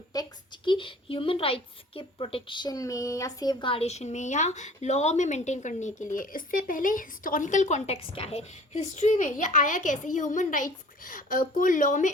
की ह्यूमन राइट्स के प्रोटेक्शन में या सेफ गार्डेशन में या लॉ में मेंटेन करने के लिए। इससे पहले हिस्टोरिकल कॉन्टेक्स्ट क्या है, हिस्ट्री में ये आया कैसे, ह्यूमन राइट्स को लॉ में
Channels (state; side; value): normal; both; correlation 0.48